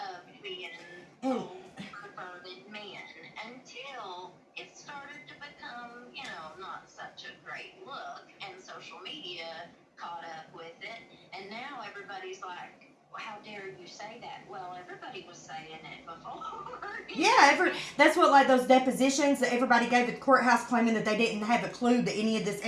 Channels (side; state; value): both; identical; correlation 1.00